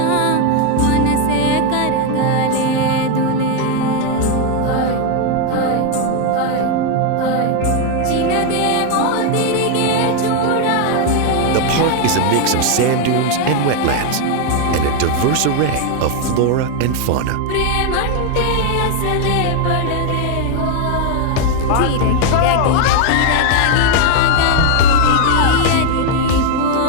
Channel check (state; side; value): different; both; correlation 0.01